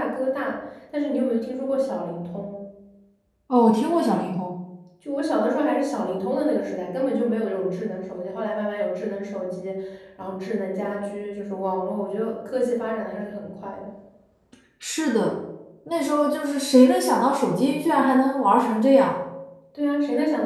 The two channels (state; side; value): identical; both; correlation 1.00